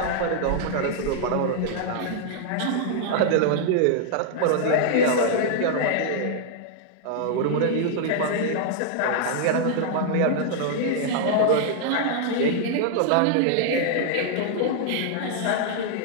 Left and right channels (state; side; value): different; both; correlation -0.01